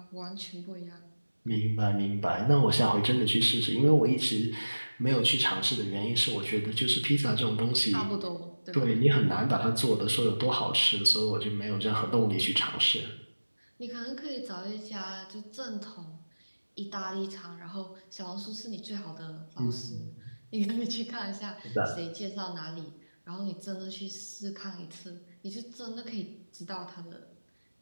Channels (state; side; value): inverted; both; correlation -1.00